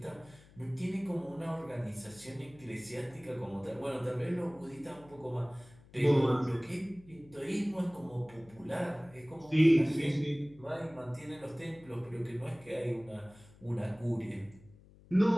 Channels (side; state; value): left; noise; hum, 24 dB below the sound